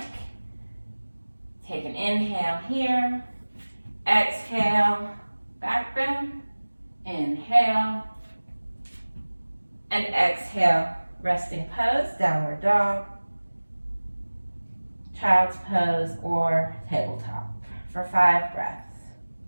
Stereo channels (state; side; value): inverted; both; correlation -1.00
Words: Take an inhale here. Exhale, back bend. Inhale. And exhale, resting pose, downward dog, child's pose, or tabletop for 5 breaths.